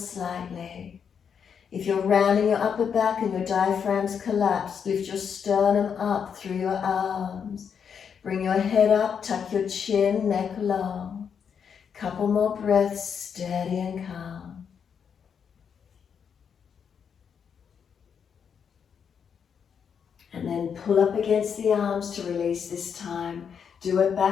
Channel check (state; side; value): quieter; right; 7.1 dB